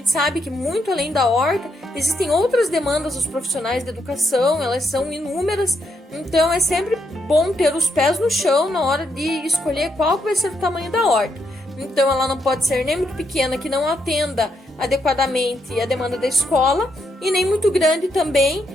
sabe que muito além da horta existem outras demandas dos profissionais de educação, elas são inúmeras, então é sempre bom ter os pés no chão na hora de escolher qual vai ser o tamanho da horta. Então ela não pode ser nem muito pequena que não atenda adequadamente a demanda da escola, e nem muito grande também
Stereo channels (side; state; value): both; normal; correlation 0.79